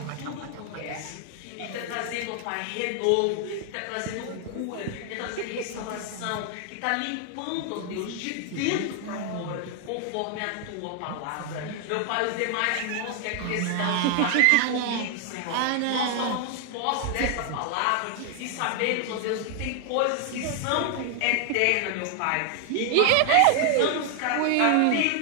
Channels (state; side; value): different; both; correlation 0.00